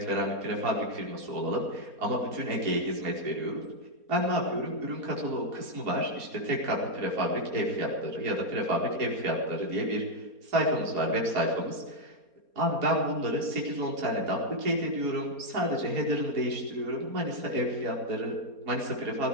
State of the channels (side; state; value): left; late; 4.3 ms